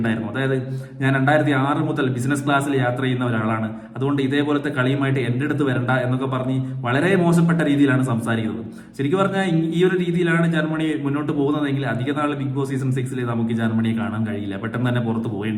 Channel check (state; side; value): identical; both; correlation 1.00